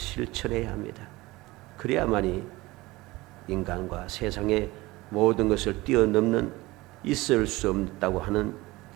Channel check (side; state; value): left; quieter; 20.5 dB